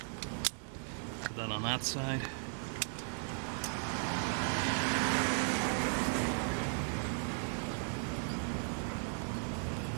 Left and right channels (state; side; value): silent; left; 53 dB below the other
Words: Put that on that side.